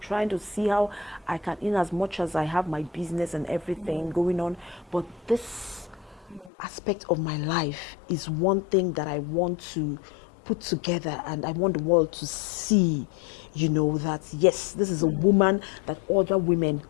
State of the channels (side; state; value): right; drops out; at 6.5 s